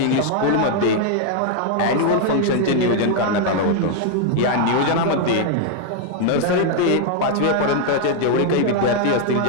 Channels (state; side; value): different; both; correlation 0.00